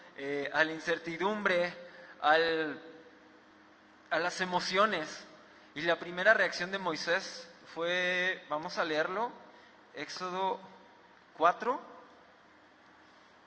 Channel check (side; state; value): both; identical; correlation 1.00